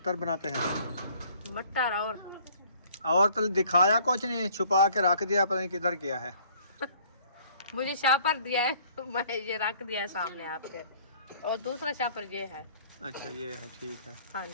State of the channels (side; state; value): both; inverted; correlation -0.57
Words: बनाते हैं। मटर और तो दिखाया कुछ नहीं, छुपा के रख दिया, पता नहीं किधर गया है। मुझे शापर दिया है, मैं ये रख दिया है सामने आपके, और दूसरा शापर ये है। अच्छा ये है, ठीक है। हाँ